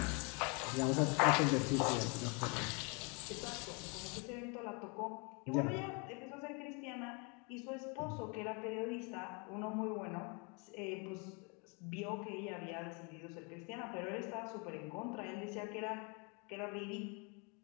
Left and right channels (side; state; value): right; quieter; 33.1 dB